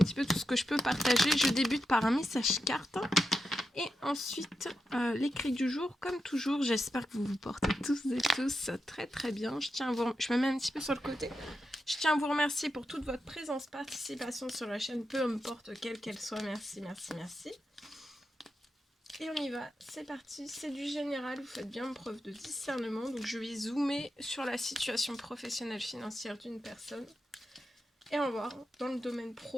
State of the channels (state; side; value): normal; both; correlation 0.88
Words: peu tout ce que je peux partager. Je débute par un message carte et ensuite l'écrit du jour, comme toujours. J'espère que vous vous portez tous et tous très très bien. Je me mets un petit peu sur le côté. Je tiens à vous remercier pour toute votre présence, participation sur la chaîne, peu importe quelle qu'elle soit. Merci, merci, merci. Et on y va, c'est parti, c'est du général, vous faites bien preuve de discernement. Donc je vais zoomer sur la situation professionnelle financière d'une personne. Et on va voir dans le domaine